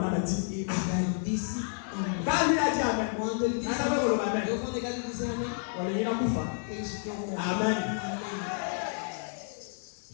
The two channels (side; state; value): right; silent; 58 dB below the other